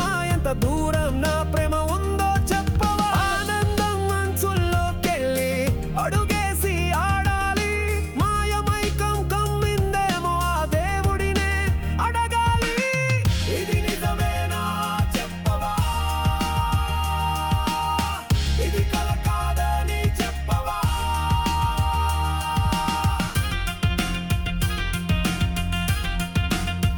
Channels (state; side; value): identical; both; correlation 1.00